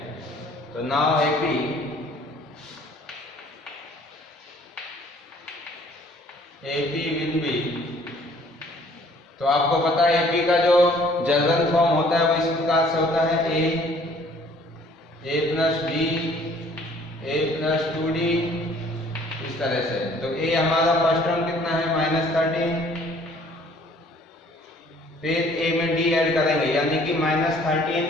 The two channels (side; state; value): both; normal; correlation 0.57